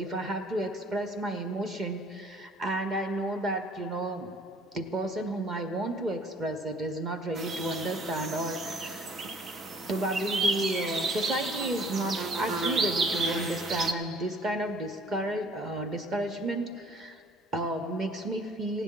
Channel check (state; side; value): normal; both; correlation 0.56